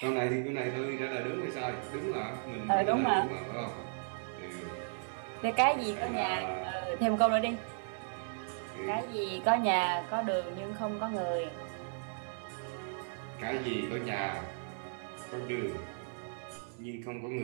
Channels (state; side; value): silent; left; digital silence